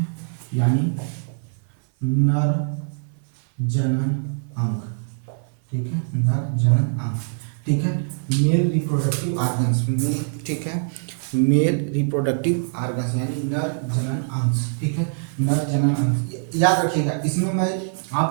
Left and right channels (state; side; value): silent; left; 59 dB below the other